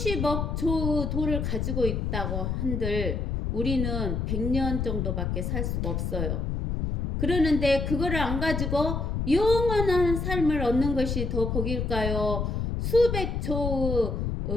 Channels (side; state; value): left; noise; rumble, 1 dB below the sound